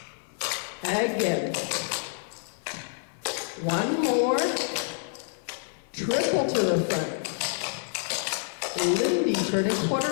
again. 1 more. Triple to the front. Lindy, turning quarter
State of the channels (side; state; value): right; silent; 59 dB below the other